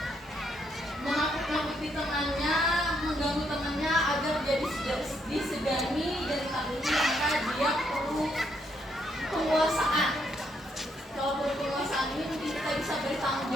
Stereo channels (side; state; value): both; normal; correlation 0.75